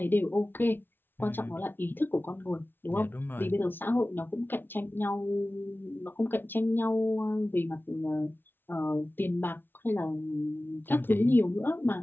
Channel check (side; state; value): right; late; 0.10 ms